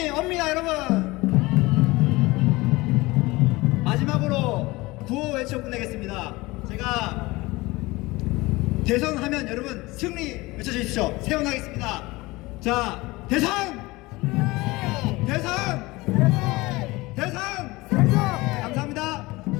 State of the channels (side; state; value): right; quieter; 21.5 dB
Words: 옵니다, 여러분. 마지막으로 구호 외쳐 끝내겠습니다. 제가 대선하면 여러분 승리 외쳐주십시오. 세원하겠습니다. 자, 대선! 대선! 대선! 감사합니다.